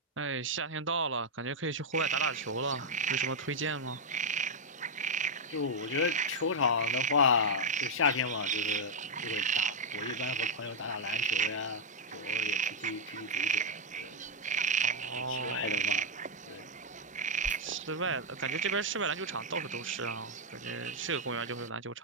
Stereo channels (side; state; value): both; normal; correlation -0.02